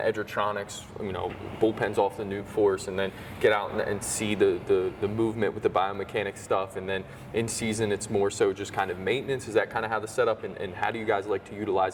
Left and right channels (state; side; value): identical; both; correlation 1.00